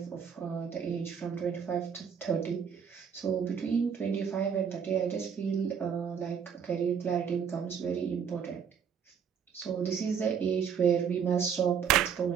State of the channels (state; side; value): quieter; left; 7.2 dB